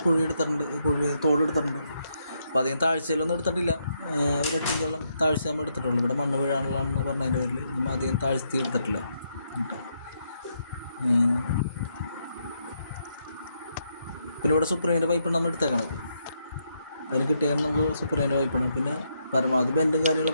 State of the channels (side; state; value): both; inverted; correlation -0.78